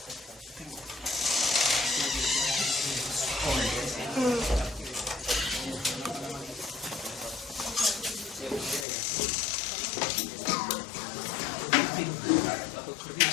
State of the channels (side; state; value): right; drops out; at 8.8 s